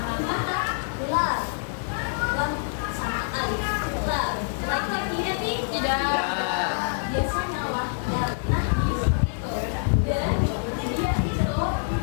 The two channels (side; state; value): right; silent; 58 dB below the other